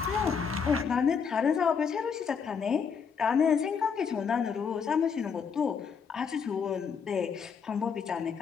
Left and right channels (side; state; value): right; quieter; 6.3 dB